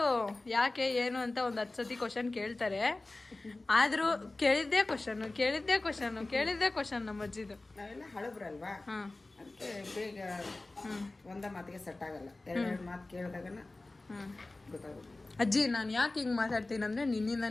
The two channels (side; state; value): right; quieter; 3.0 dB